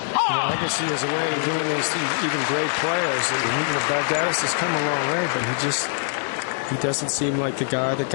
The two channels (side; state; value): right; silent; 61 dB below the other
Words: Agassi has a way of doing this to even great players. Baghdatis has come a long way, but he doesn't seem like the guy that